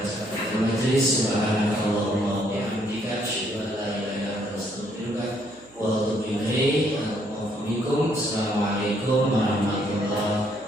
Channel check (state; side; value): noise; right; hum, 29 dB below the sound